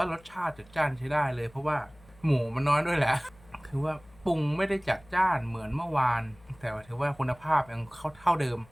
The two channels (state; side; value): noise; left; hum, 26 dB below the sound